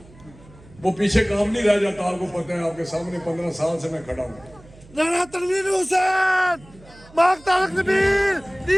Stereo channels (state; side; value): noise; right; hum, 24 dB below the sound